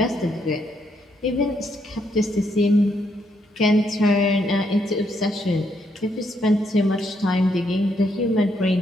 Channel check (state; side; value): normal; both; correlation 0.75